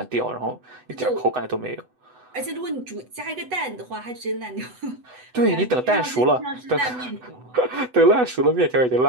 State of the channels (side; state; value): left; late; 8.0 ms